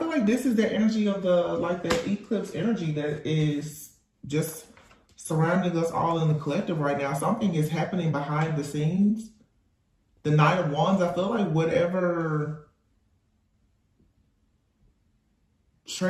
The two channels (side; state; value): both; identical; correlation 1.00